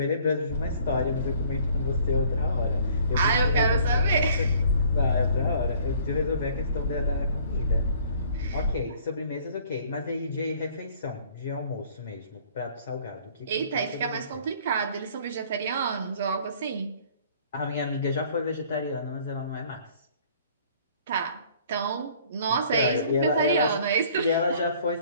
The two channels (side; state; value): both; inverted; correlation -0.56